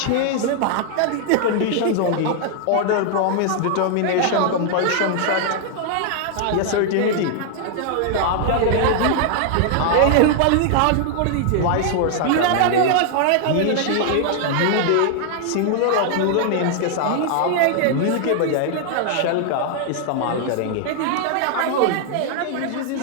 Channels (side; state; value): both; different; correlation 0.00